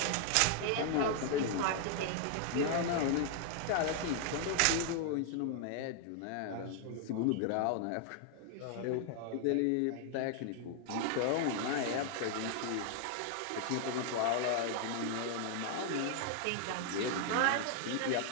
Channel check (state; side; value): different; both; correlation 0.00